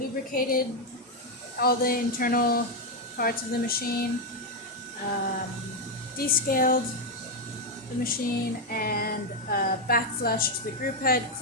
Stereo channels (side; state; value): both; normal; correlation 0.03